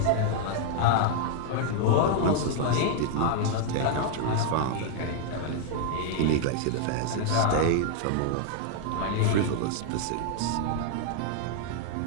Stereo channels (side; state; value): both; different; correlation 0.00